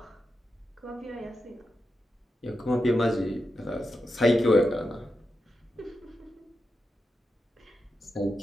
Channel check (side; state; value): both; normal; correlation 0.88